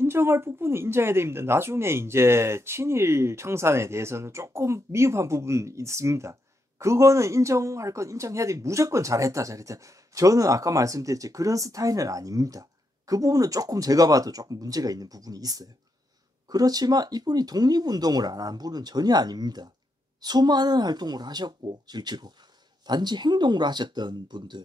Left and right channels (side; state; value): both; normal; correlation 0.82